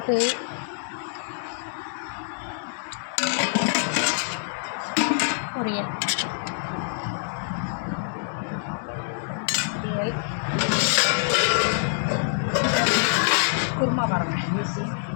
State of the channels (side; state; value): right; silent; digital silence